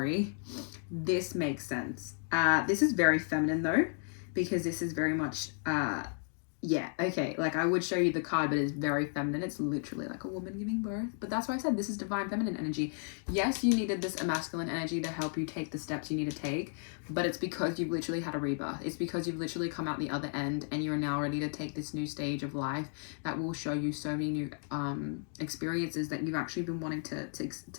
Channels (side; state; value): right; silent; 55 dB below the other